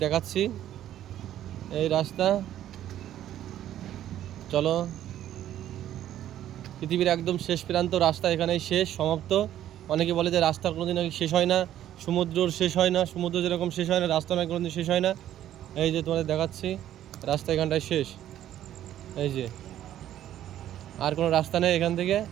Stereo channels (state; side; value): quieter; left; 11.9 dB